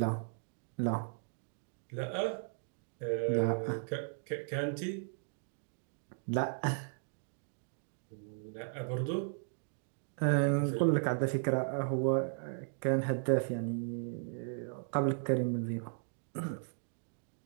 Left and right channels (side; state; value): left; silent; digital silence